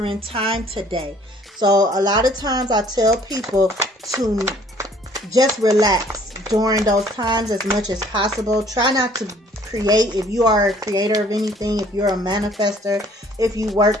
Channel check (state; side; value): normal; both; correlation 0.58